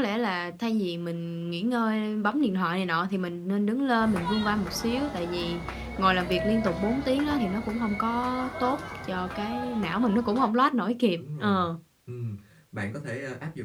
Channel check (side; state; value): both; identical; correlation 1.00